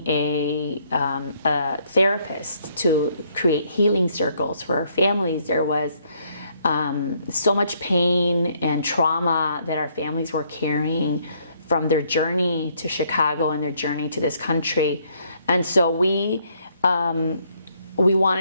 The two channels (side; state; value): both; inverted; correlation -0.68